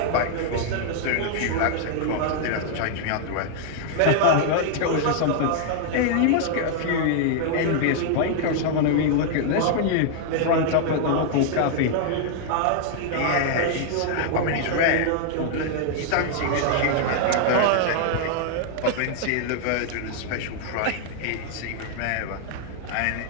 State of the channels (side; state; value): both; different; correlation 0.00